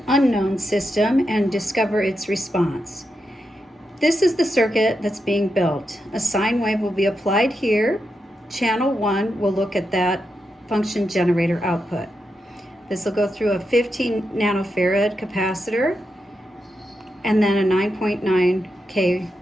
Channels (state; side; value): normal; both; correlation 0.86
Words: unknown system and discover its response. This is the circuit that's being built. A sine wave will be applied here. Channel 1 will look at that function generator output. This will go through a 15 nanofarad capacitor and then a 9.9K